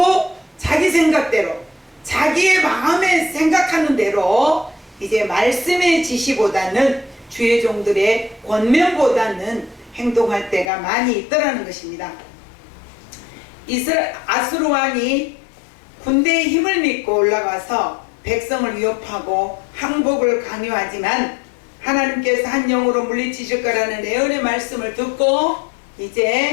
자기 생각대로 자기의 마음에 생각하는 대로 이제 말씀의 지시보다는 주의 종들의 권면보다는 행동할 때가 많이 있더라는 것입니다. 아수르 왕이 군대의 힘을 믿고 올라가서 백성을 위협하고 항복을 강요하지만 하나님께서 한 영으로 물리치실 거라는 예언의 말씀을 듣고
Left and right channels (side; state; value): right; drops out; at 10.7 s